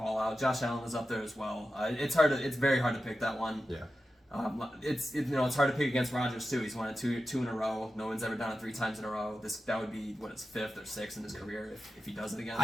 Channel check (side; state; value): both; normal; correlation 0.91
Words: out. Josh Allen is up there as well. It's very hard to pick that one. Yeah. It's hard to pick against Rodgers too. He's won it two in a row. No one's ever done it 3 times in a row. That would be his 5th or 6th in his career if he does it again.